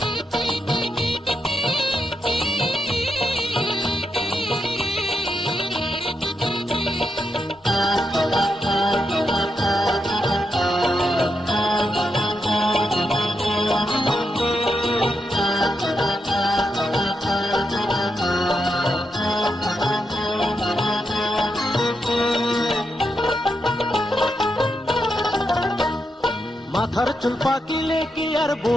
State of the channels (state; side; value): normal; both; correlation 0.84